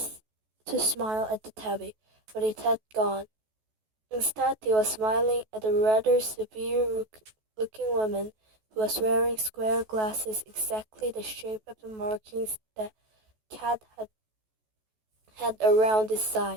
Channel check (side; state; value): left; late; 14 ms